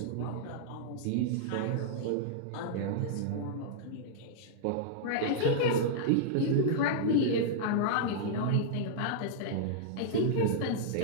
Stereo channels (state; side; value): different; both; correlation -0.02